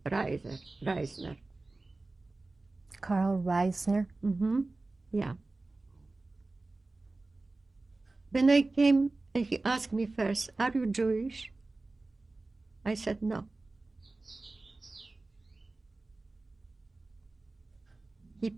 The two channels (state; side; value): quieter; left; 3.2 dB